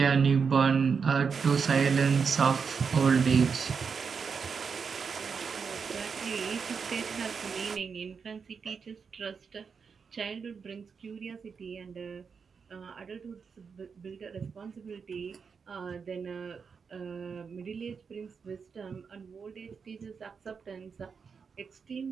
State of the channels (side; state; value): left; quieter; 5.8 dB